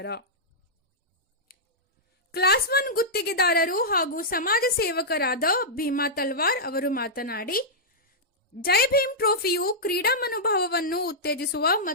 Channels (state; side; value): normal; both; correlation -0.10